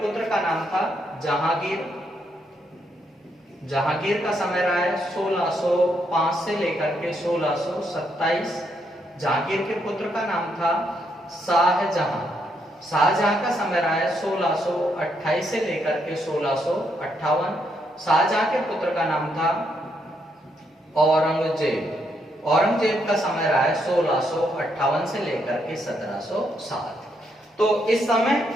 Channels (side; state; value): both; normal; correlation 0.77